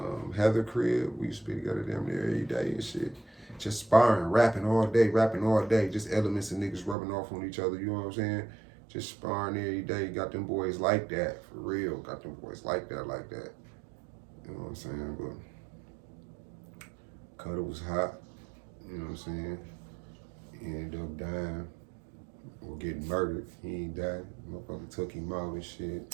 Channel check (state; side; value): drops out; left; at 7.0 s